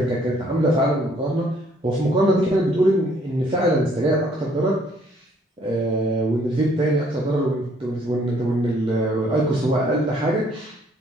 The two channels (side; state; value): both; normal; correlation 0.63